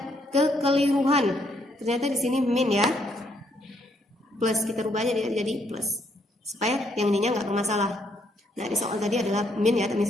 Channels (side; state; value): both; normal; correlation 0.72